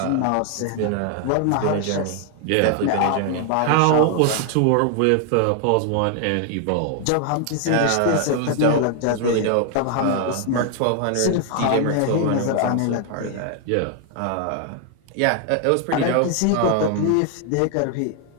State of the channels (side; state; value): both; different; correlation 0.00